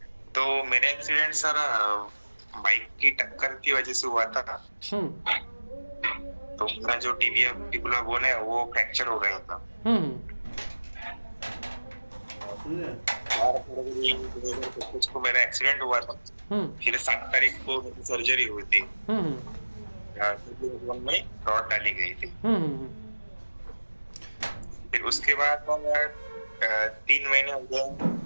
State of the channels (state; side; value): inverted; both; correlation -1.00